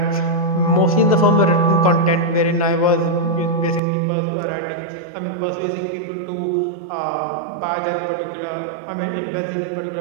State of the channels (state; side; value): drops out; left; at 3.8 s